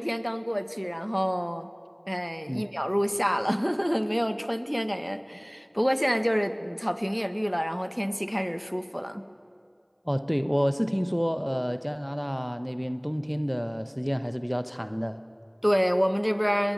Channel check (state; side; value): identical; both; correlation 1.00